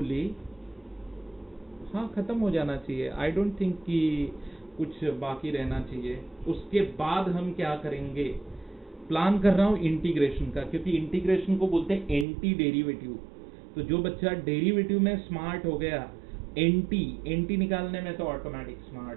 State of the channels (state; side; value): drops out; left; at 12.2 s